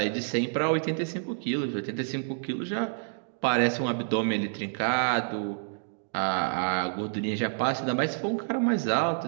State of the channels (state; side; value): silent; left; digital silence